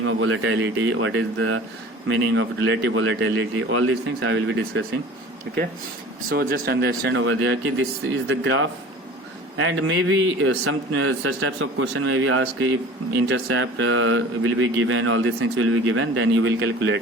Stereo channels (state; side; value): normal; both; correlation 0.42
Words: of volatility, what is the meaning of relative volatility, all these things I will be discussing. Okay, so just understand over there कि this is the graph, and maybe some such types of question may be asked if intercept will be given, all these things will be given, then you will calculate